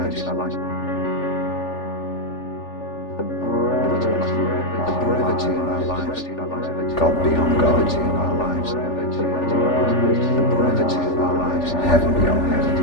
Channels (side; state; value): right; late; 3.4 ms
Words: The brevity of our lives. God beyond God in our lives. The brevity of our lives. Heaven beyond heaven. The